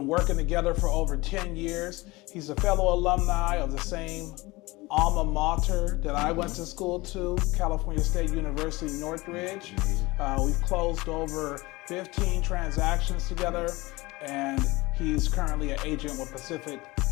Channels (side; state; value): right; quieter; 21.8 dB